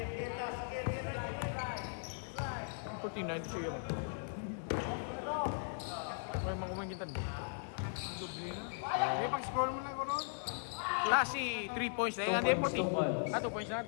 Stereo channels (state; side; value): silent; right; digital silence